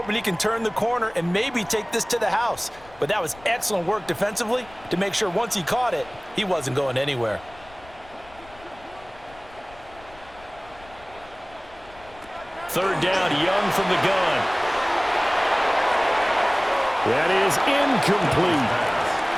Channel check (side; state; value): left; noise; rumble, 23 dB below the sound